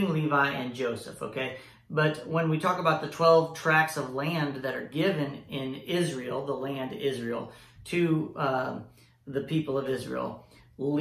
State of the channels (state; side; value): identical; both; correlation 1.00